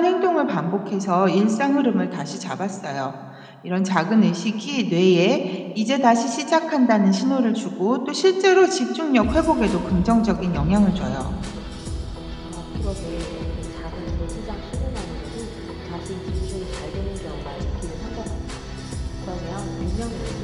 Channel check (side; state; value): both; identical; correlation 1.00